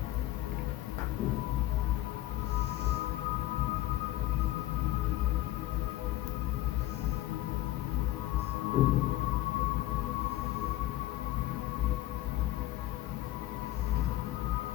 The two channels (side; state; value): right; quieter; 15.8 dB